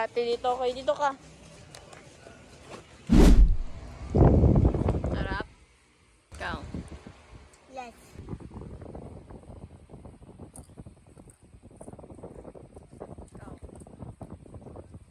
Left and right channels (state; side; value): identical; both; correlation 1.00